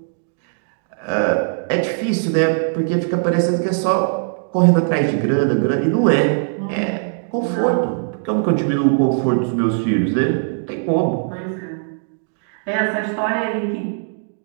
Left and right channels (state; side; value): silent; left; digital silence